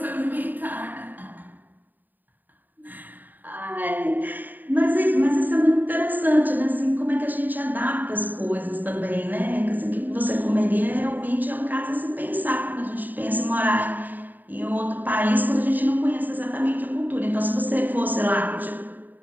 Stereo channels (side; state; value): left; late; 0.088 ms